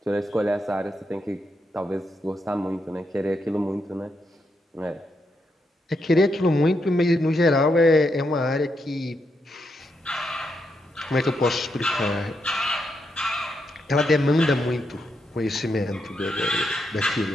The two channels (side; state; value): both; normal; correlation 0.82